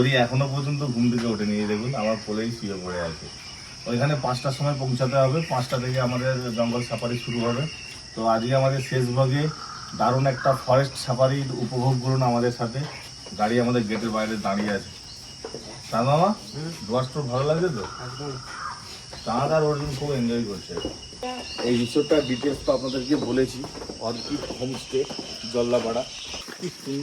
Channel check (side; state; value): both; identical; correlation 1.00